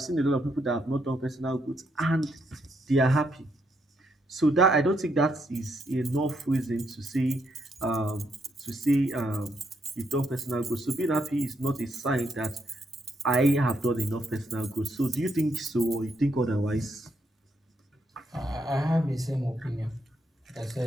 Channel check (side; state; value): both; normal; correlation 0.76